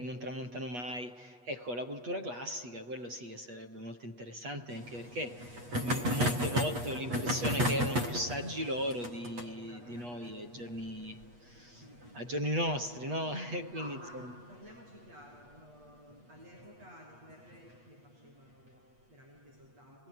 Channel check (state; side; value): late; left; 8.3 ms